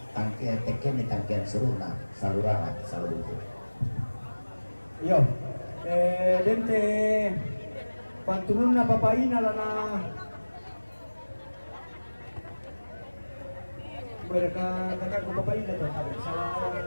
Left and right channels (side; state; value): both; inverted; correlation -1.00